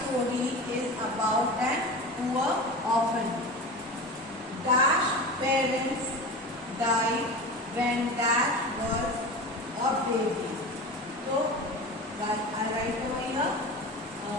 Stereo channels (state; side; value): normal; both; correlation 0.30